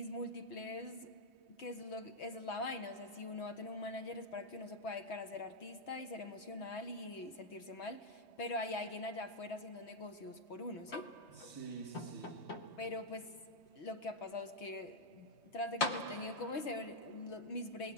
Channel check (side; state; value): right; late; 3.2 ms